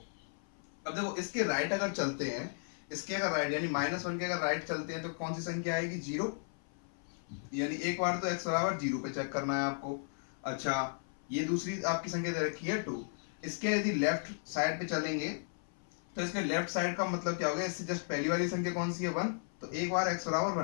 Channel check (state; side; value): silent; right; 54 dB below the other